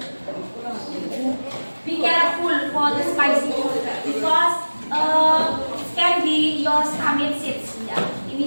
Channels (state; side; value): inverted; both; correlation -1.00